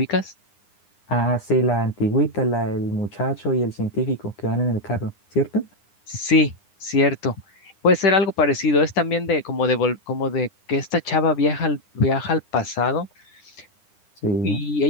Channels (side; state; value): right; late; 9.8 ms